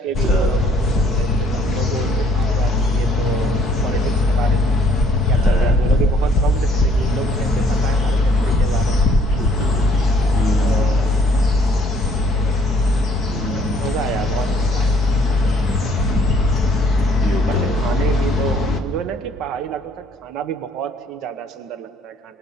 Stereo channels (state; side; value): normal; both; correlation 0.62